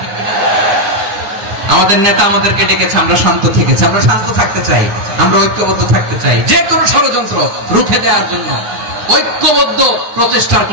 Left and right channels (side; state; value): left; late; 9.6 ms